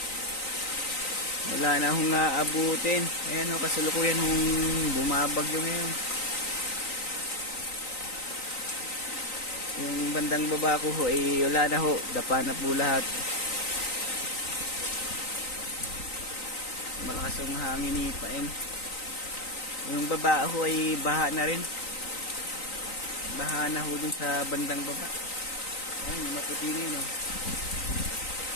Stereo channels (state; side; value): late; right; 3.9 ms